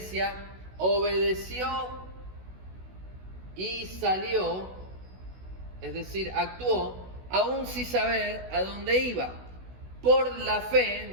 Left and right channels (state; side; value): late; left; 16 ms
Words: obedeció y salió, es decir, actuó, aún sin saber a dónde iba. Por la fe,